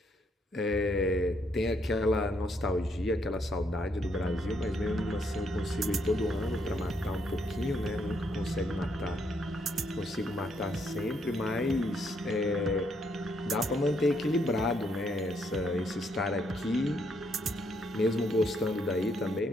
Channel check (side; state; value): both; normal; correlation 0.74